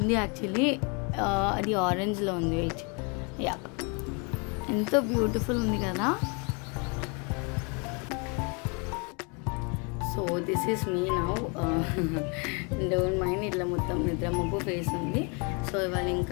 యాక్చువల్లీ, అది ఆరెంజ్లో ఉంది. వెయిట్, యా, ఎంతో బ్యూటిఫుల్ ఉంది కదా. So this is me now, don't mind. ఇట్లా మొత్తం నిద్ర మబ్బు ఫేస్ ఉంది. సో ఇవాళ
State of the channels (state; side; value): quieter; right; 33.4 dB